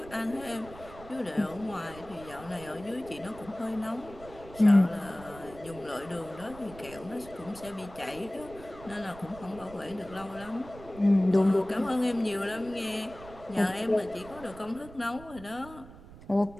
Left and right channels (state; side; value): noise; right; rumble, 17 dB below the sound